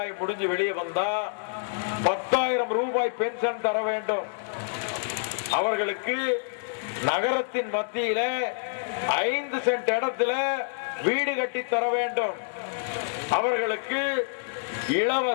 முடிஞ்சு வெளியே வந்தா 10,000 ரூபாய் பென்ஷன் தர வேண்டும். அவர்களுக்கு நகரத்தின் மத்தியில 5 சென்ட் இடத்துல வீடு கட்டி தர வேண்டும். அவர்களுக்கு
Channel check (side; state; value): right; silent; digital silence